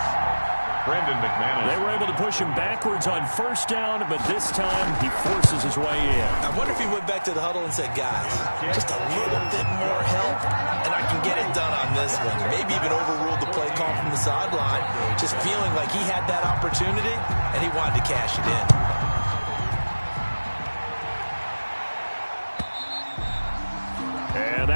Brandon McManus. They were able to push him backwards on first down, but this time he forces his way in. I wonder if he went back to the huddle and said, guys, just a little bit more help, and I can get it done on this one. Maybe even overruled the play call from the sideline, just feeling like he had that opportunity, and he wanted to cash it in. And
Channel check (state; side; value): inverted; both; correlation -1.00